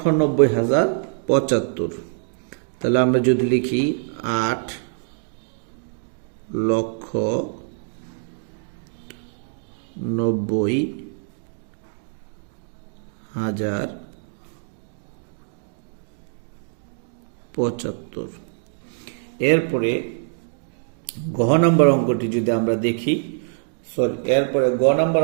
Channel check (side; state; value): left; silent; digital silence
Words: তাহলে আমরা যদি লিখি 8,90,075। এরপরে গ নম্বর অঙ্কটি যদি